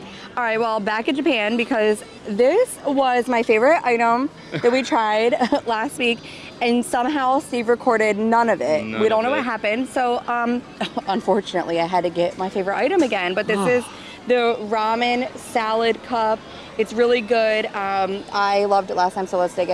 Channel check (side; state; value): both; identical; correlation 1.00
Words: All right, well, back in Japan, because this was my favorite item that we tried last week, and somehow Steve recorded none of it. We don't know what happened. So, unfortunately, I had to get my favorite item again, but this is the ramen salad cup. It's really good. I loved it last time, so let's dig